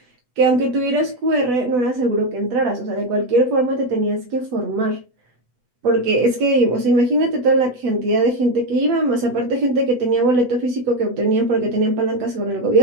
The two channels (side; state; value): left; late; 8.1 ms